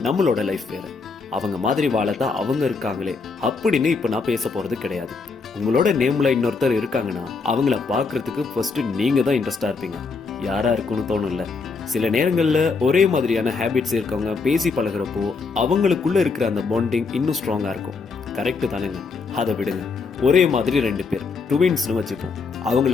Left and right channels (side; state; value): right; quieter; 4.6 dB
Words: நம்மளோட லைஃப் வேற. அவங்க மாதிரி வாழத்தான் அவங்க இருக்காங்களே அப்படின்னு இப்ப நான் பேச போறது கிடையாது. உங்களோட நேம்ல இன்னொருத்தர் இருக்காங்கன்னா அவங்கள பாக்குறதுக்கு ஃபர்ஸ்ட் நீங்க தான் இன்ட்ரெஸ்டா இருப்பீங்க. யாரா இருக்குன்னு தோணும்ல. சில நேரங்கள்ல ஒரே மாதிரியான ஹேபிட்ஸ் இருக்கவங்க பேசி பழகுறப்போ அவங்களுக்குள்ள இருக்கிற அந்த பாண்டிங் இன்னும் ஸ்ட்ராங்கா இருக்கும். கரெக்ட் தானேங்க? அதை விடுங்க. ஒரே மாதிரி ரெண்டு பேர் ட்வின்ஸ்னு வச்சுப்போம். அவங்கள